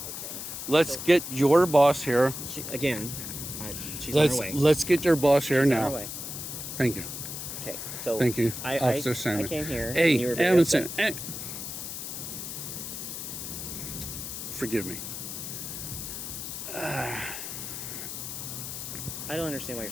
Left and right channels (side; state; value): left; noise; hiss, 7 dB below the sound